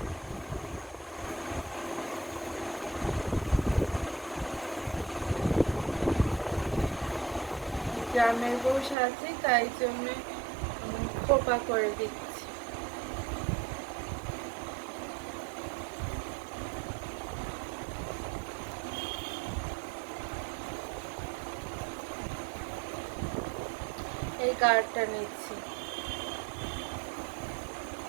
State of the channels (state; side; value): drops out; left; at 9.0 s